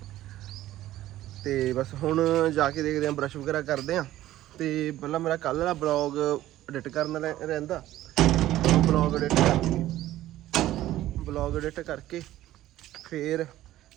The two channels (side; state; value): left; quieter; 14.5 dB